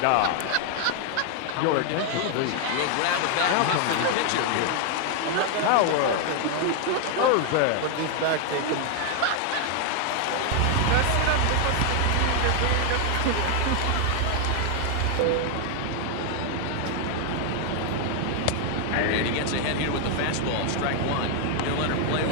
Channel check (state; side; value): different; both; correlation 0.00